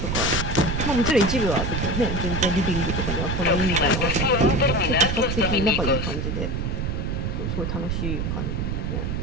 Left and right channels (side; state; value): right; noise; rumble, 1 dB below the sound